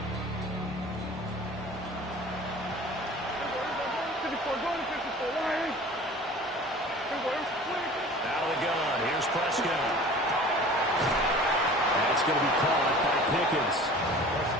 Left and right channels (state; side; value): normal; both; correlation 0.43